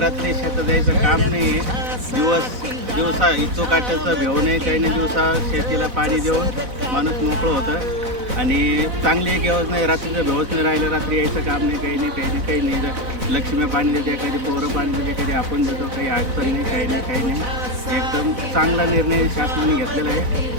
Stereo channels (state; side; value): late; left; 4.0 ms